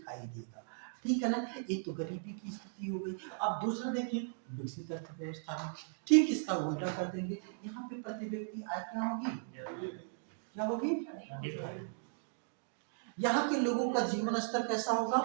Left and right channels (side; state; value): left; silent; digital silence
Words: देगा। ठीक है ना, एक तो गरीबी की स्थिति हो गई। अब दूसरा देखिए, विकसित अर्थव्यवस्था में ठीक इसका उल्टा कर देंगे। यहाँ पे प्रति व्यक्ति आय क्या होगी? क्या होगी? यहाँ के लोगों का जीवन स्तर कैसा होगा?